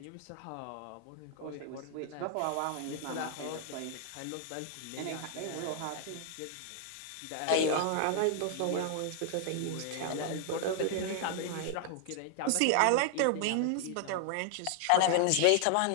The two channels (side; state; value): both; different; correlation 0.00